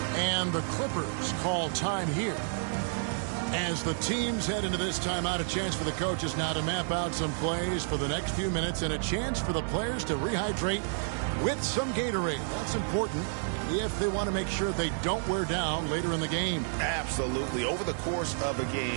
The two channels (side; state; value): left; silent; digital silence